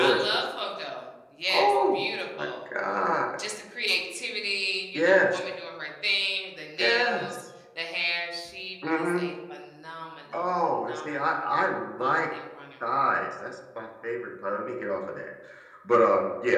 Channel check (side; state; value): both; identical; correlation 1.00